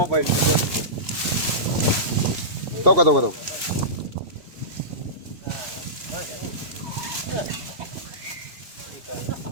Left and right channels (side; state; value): left; late; 2.9 ms